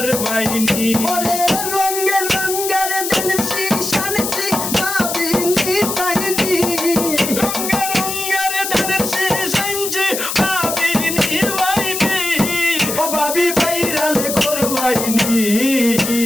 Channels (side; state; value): left; noise; hiss, 4 dB below the sound